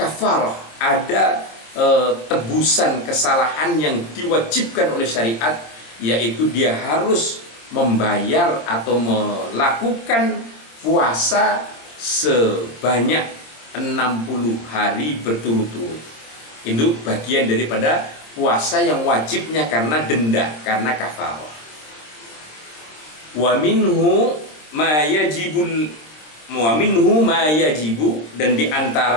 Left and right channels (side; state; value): right; late; 26 ms